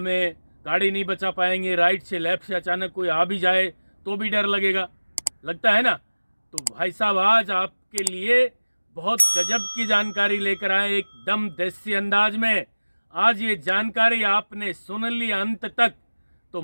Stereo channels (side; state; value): both; inverted; correlation -1.00